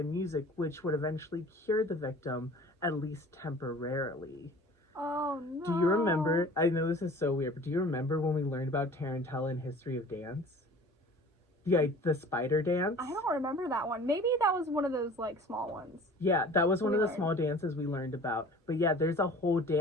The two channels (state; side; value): normal; both; correlation 0.45